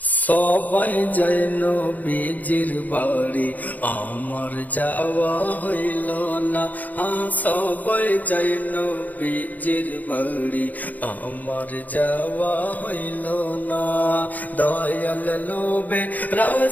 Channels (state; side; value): late; right; 0.080 ms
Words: সবাই যায় নবীজির বাড়ি, আমার যাওয়া হইল না। সবাই যায় নবীজির বাড়ি, আমার যাওয়া হইল না। দয়াল নবী